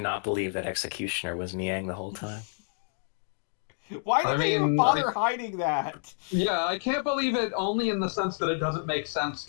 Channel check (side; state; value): right; silent; 59 dB below the other